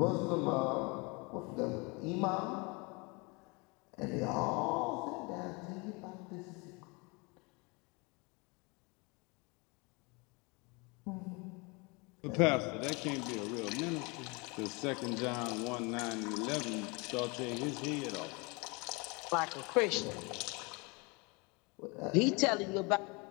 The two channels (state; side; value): quieter; right; 28.7 dB